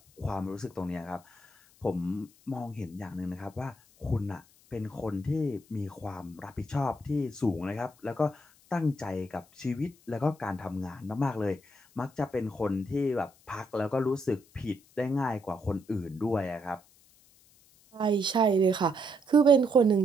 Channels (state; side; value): noise; left; hiss, 29 dB below the sound